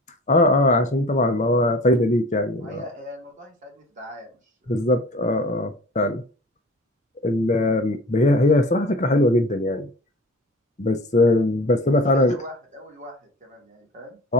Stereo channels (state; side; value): normal; both; correlation 0.41